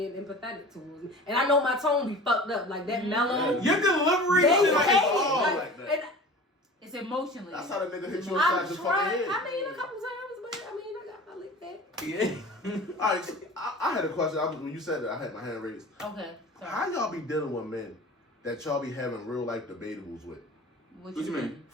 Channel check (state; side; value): normal; both; correlation 0.39